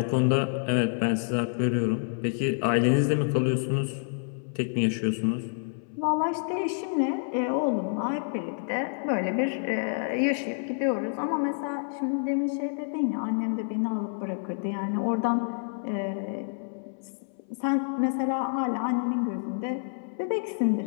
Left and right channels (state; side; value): silent; right; 59 dB below the other